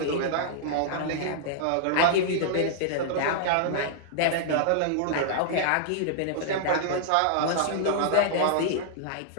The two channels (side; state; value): both; different; correlation -0.01